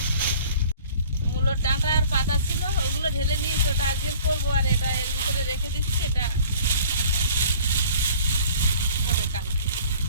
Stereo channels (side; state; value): both; inverted; correlation -0.48